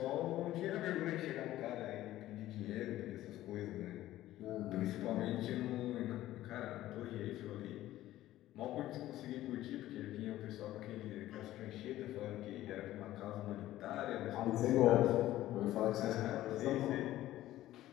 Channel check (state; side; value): quieter; right; 14.7 dB